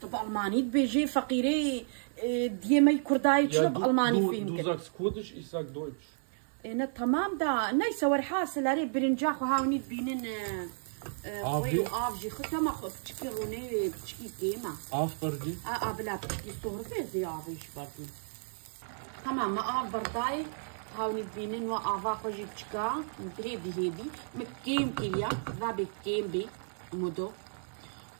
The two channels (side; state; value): left; silent; digital silence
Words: طب ألماني بيجي فقيري ديمي كرداي تشرب ألماني فيهم du sagst Kurdisch, ich sag Deutsch. أنا تمام دا نايس ورحاس لاري برنجاخ وهاوني بينن خوي وآفجي خطا ما خو بتشكي روني بتشكي كيما آفبردي بلا بتشكي صهرتي زي آفيش بردي تمام ما آف برداي هاوني بينن وآفا خوجي بتشكا هيدي هيدي مكيم كيليا ذابي كيم بي مودو